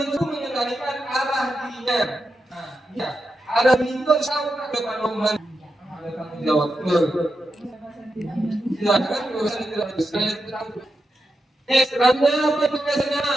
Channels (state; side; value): normal; both; correlation 0.88